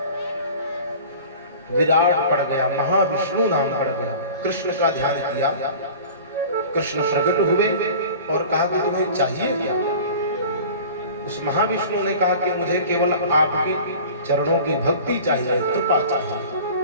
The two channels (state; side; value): inverted; both; correlation -0.41